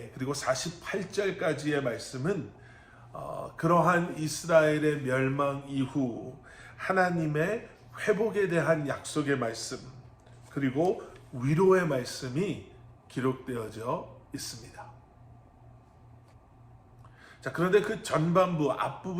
그리고 48절까지의 말씀은 그러한 이스라엘의 멸망 이후 하나님의 회복에 대한 약속의 말씀, 그리고 위로의 말씀이 기록되어져 있습니다. 자, 그런데 그 전반부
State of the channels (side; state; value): both; identical; correlation 1.00